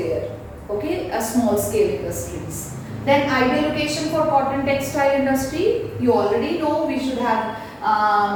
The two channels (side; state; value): both; identical; correlation 1.00